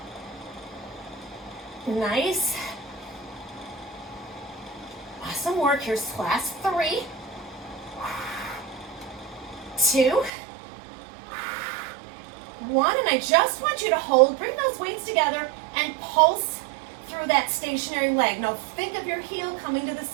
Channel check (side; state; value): left; drops out; at 10.3 s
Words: Nice. Awesome work. Here's class 3. 2. 1. And I just want you to hold, bring those weights together and pulse through that stationary leg. Now think of your heel coming to the